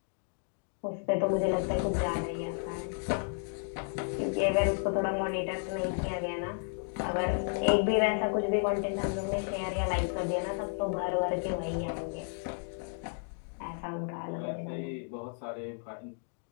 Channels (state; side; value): silent; right; 56 dB below the other